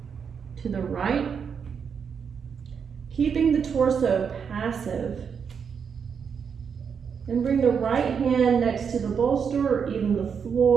to the right, keeping the torso passive. And bring the right hand next to the bolster or even the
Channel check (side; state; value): left; quieter; 6.7 dB